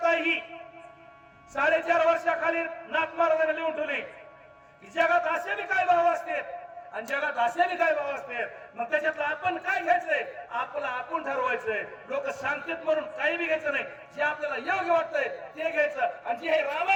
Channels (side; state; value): both; identical; correlation 1.00